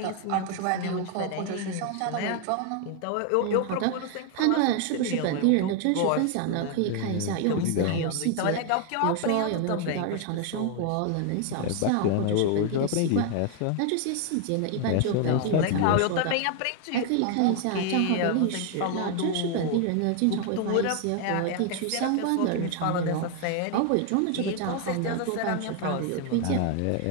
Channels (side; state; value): both; different; correlation 0.00